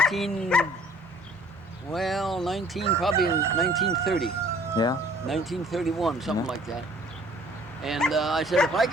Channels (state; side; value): normal; both; correlation 0.55